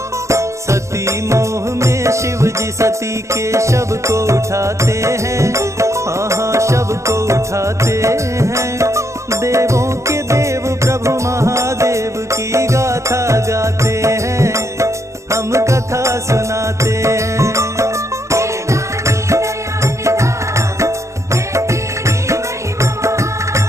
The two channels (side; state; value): left; late; 0.14 ms